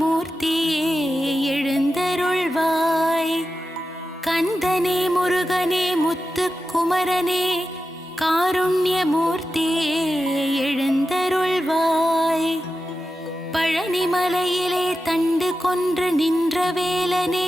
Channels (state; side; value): normal; both; correlation 0.91